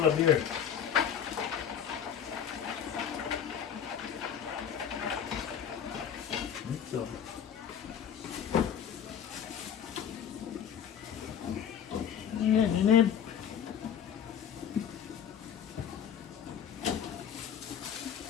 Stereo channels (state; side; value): quieter; right; 8.5 dB